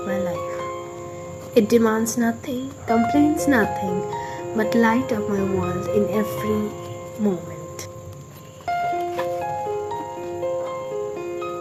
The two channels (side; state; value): both; identical; correlation 1.00